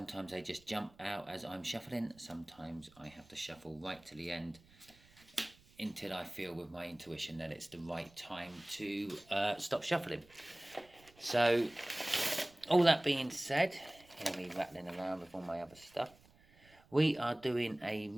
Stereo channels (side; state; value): right; noise; rumble, 27 dB below the sound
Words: they just jump out as I'm shuffling. Sometimes I have to shuffle right to the end until I feel with my intuition that it's the right time to stop shuffling. So, all that being said, hear me rattling around with all my other stuff. We are doing a